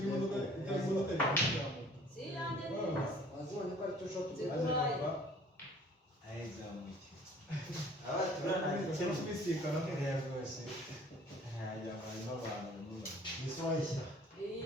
imodoka imodoka wazibonye ko ari tushoti ayizamuki aba turana kubisikana rwose hajya harimo abantu nisoyishya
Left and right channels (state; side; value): normal; both; correlation 0.53